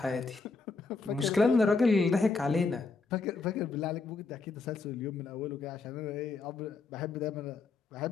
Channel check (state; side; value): quieter; right; 4.2 dB